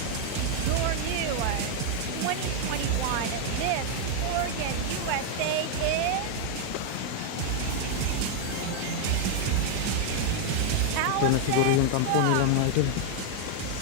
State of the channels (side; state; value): both; different; correlation 0.00